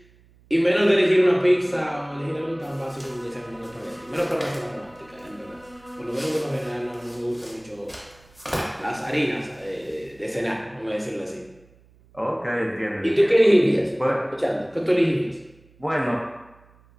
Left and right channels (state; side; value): noise; right; hum, 29 dB below the sound